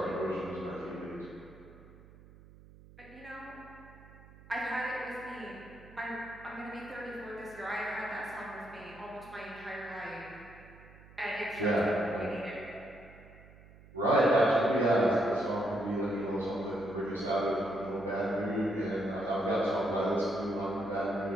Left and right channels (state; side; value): noise; right; hum, 21 dB below the sound